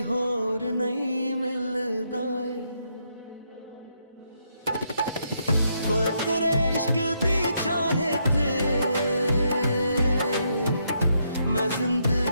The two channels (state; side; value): inverted; both; correlation -0.77